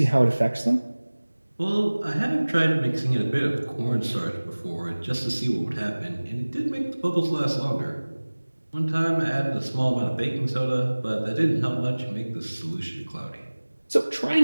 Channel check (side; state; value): both; inverted; correlation -1.00